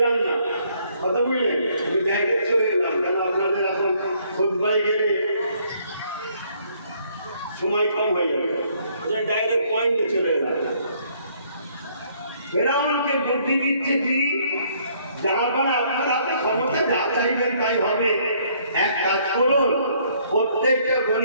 না, কথা বুঝলেন? আমি ডাইরেক্ট চলে এলাম, কেন আপনাদের এখন খুতবায় গেলে সময় কম হয়ে যাবে, ডাইরেক্ট পয়েন্টে চলে এলাম। ফেরাউনকে বুদ্ধি দিচ্ছে কি, যাবার আপনার হাতে ক্ষমতা, যা চাইবেন তাই হবে। এক কাজ করুন, প্রত্যেকটা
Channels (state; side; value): inverted; both; correlation -0.65